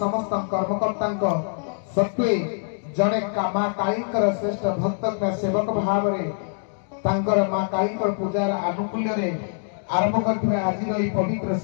कर्मकर्ता सत्वे जड़े माँ काली श्रेष्ठ भक्त सेवक भाव में माँ काली पूजार आनुकूल्य आरंभ कर आज पवित्र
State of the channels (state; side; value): silent; right; digital silence